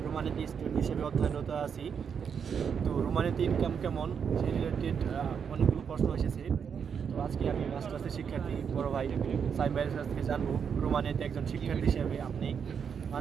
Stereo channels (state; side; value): quieter; left; 7.0 dB